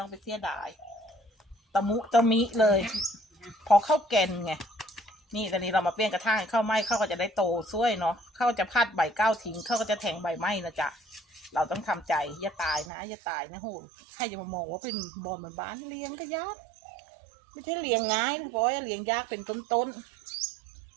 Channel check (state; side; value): drops out; left; at 12.9 s